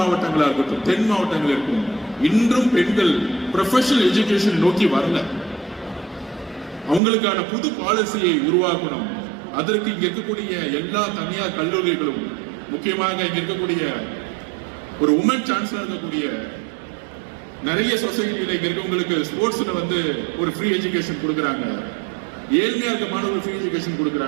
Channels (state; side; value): drops out; left; at 7.0 s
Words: இருக்கட்டும், தென் மாவட்டங்கள் இருக்கும், இன்றும் பெண்கள் ப்ரொஃபஷனல் எஜுகேஷன் நோக்கி வரல. அவங்களுக்கான புது பாலிசியை உருவாக்கணும். அதற்கு இங்க இருக்கக்கூடிய எல்லா தனியார் கல்லூரிகளும், முக்கியமாக இங்க இருக்கக்கூடிய ஒரு உமன் சான்சலர் இருக்கக்கூடிய நிறைய சொசைட்டியில இங்க இருக்கவங்களுக்கு ஸ்போர்ட்ஸ்ல வந்து ஒரு ஃப்ரீ எஜுகேஷன் கொடுக்குறாங்க. ஏழ்மையா இருக்க மாணவர்கள் ஃப்ரீ எஜுகேஷன்